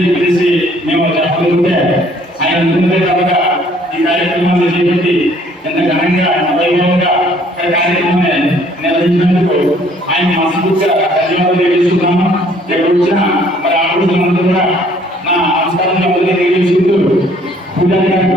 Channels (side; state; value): both; normal; correlation 0.60